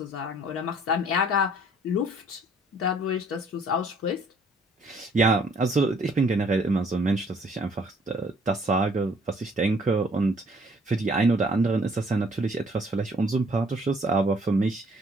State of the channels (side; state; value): both; normal; correlation 0.60